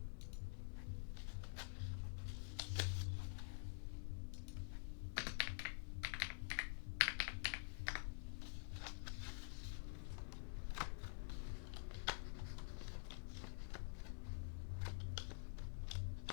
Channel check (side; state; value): right; silent; digital silence